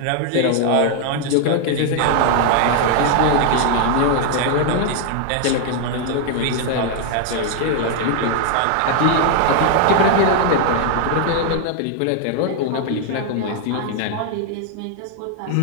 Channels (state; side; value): different; both; correlation 0.00